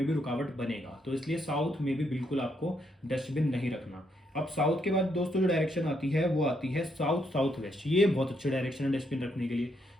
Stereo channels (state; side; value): normal; both; correlation 0.76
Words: भी रुकावट बनेगा। तो इसलिए साउथ में भी बिल्कुल आपको डस्टबिन नहीं रखना। अब साउथ के बाद दोस्तों जो डायरेक्शन आती है वो आती है साउथ साउथ वेस्ट। ये बहुत अच्छी डायरेक्शन है डस्टबिन रखने के लिए,